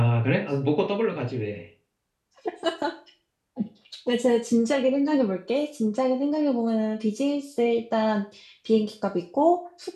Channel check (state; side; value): identical; both; correlation 1.00